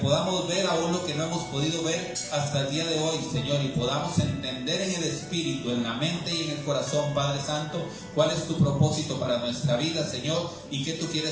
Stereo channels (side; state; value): both; identical; correlation 1.00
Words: ver aún lo que no hemos podido ver hasta el día de hoy, Señor, y podamos entender en el espíritu, en la mente y en el corazón, Padre Santo, cuál es tu propósito para nuestra vida, Señor, y qué tú